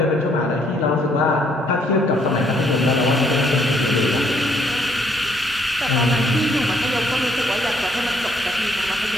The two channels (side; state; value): both; normal; correlation 0.67